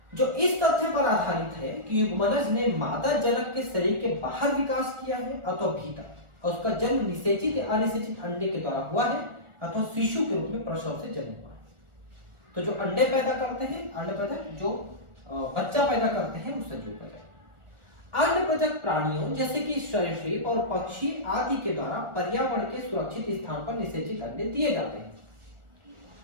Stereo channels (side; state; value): left; late; 1.4 ms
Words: जो इस तथ्य पर आधारित है कि युग्मनज ने मादा जनक के शरीर के बाहर विकास किया है अथवा भीतर, और उसका जन्म निषेचित या अनिषेचित अंडे के द्वारा हुआ है अथवा शिशु के रूप में प्रसव से जन्म हुआ है। तो जो अंडे पैदा करते हैं अंडप्रजक, जो बच्चा पैदा करते हैं वो सजीव प्रजक। अंडप्रजक प्राणियों जैसे कि सरीसृप और पक्षी आदि के द्वारा पर्यावरण के सुरक्षित स्थान पर निषेचित अंडे दिए जाते हैं।